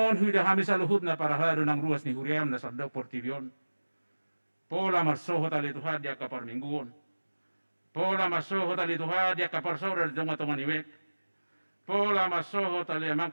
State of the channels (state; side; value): inverted; both; correlation -1.00